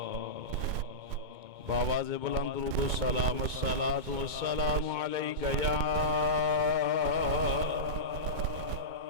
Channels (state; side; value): late; left; 2.2 ms